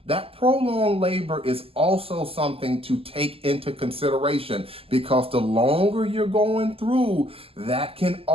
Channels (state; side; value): late; left; 0.28 ms